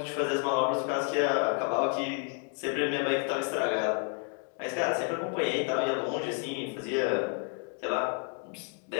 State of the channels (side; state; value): right; quieter; 37.2 dB